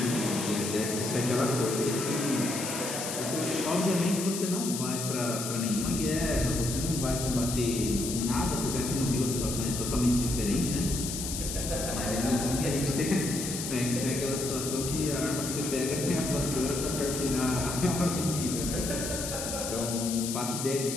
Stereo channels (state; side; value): noise; left; hiss, 5 dB below the sound